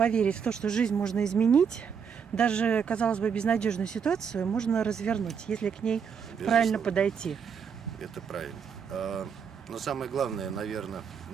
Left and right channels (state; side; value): quieter; left; 6.8 dB